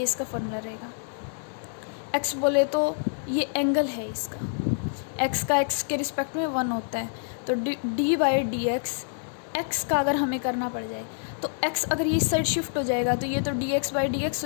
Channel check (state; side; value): silent; right; digital silence